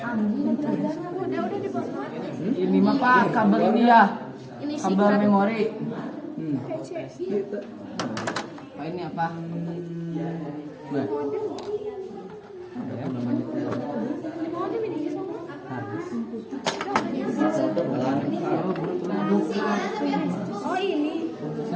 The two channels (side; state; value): both; identical; correlation 1.00